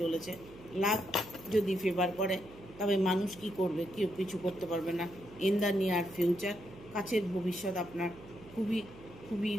লাক যদি ফেভার করে তবে মানুষ কি করবে? কেউ কিছু করতে পারবে না। ইন দ্য নিয়ার ফিউচার, কাছের ভবিষ্যৎ আপনার খুবই খুবই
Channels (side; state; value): right; noise; hum, 18 dB below the sound